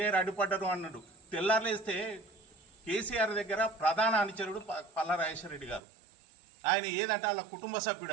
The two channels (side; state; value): left; drops out; at 5.8 s